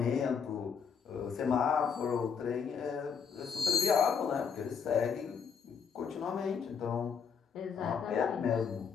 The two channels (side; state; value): right; quieter; 6.5 dB